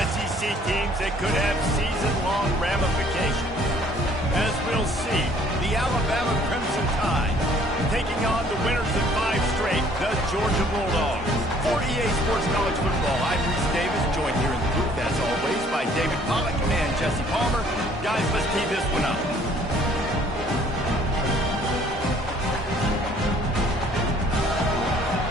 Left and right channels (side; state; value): both; normal; correlation 0.58